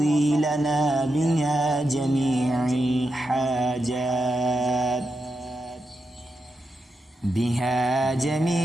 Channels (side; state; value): both; normal; correlation 0.87